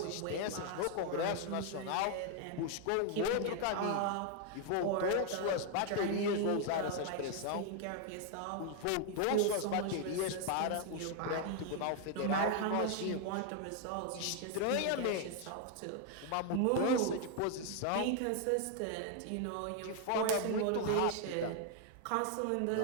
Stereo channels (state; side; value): different; both; correlation 0.00